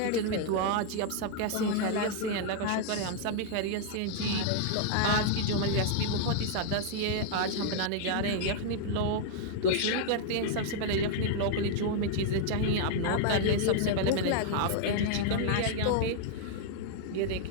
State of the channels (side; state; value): both; different; correlation -0.01